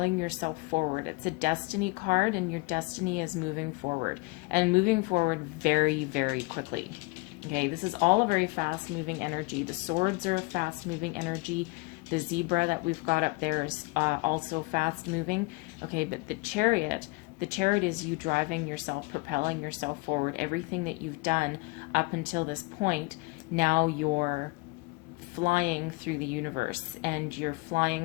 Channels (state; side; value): quieter; right; 25.8 dB